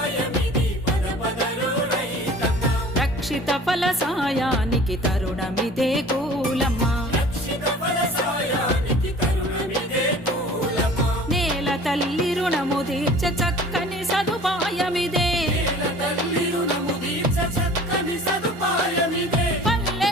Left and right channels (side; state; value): both; normal; correlation 0.46